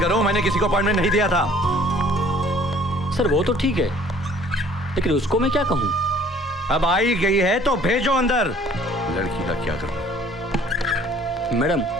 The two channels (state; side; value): normal; both; correlation 0.55